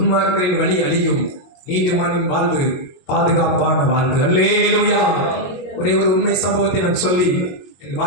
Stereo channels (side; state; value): right; late; 22 ms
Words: வழி அழியும், நீதிமானின் வாழ்வு பாதுகாப்பான வாழ்வு. அல்லேலூயா. ஒரே ஒரு உண்மை சம்பவத்தை நான் சொல்லி என்